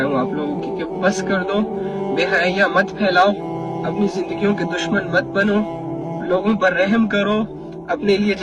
ہوں آپ لوگوں کی کہ بس کر دو، بے حیاں مت پھیلاؤ، اپنی زندگیوں کے دشمن مت بنو، لوگوں پر رحم کرو، اپنے لیے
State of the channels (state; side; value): identical; both; correlation 1.00